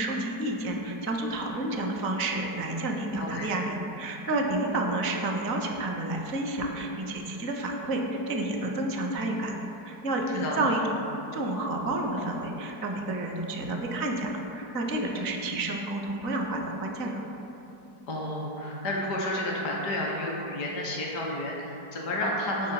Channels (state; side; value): late; right; 4.7 ms